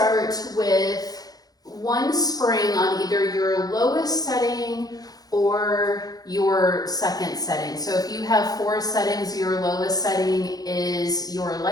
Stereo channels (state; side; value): late; right; 0.18 ms